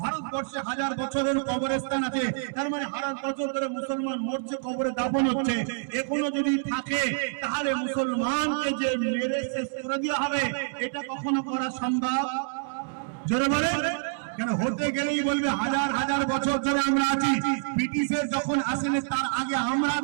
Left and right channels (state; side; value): silent; left; 60 dB below the other